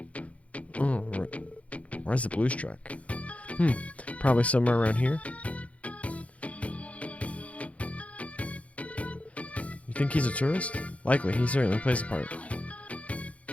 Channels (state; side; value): late; right; 0.065 ms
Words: Oh, where's the blues track? Probably somewhere around here. You think he's a tourist? Likely, he certainly plays the part.